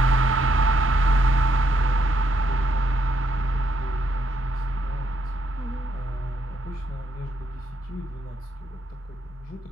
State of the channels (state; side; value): normal; both; correlation 0.76